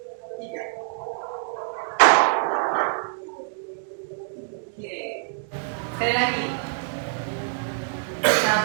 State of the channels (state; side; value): silent; left; digital silence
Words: 3. Sekali lagi.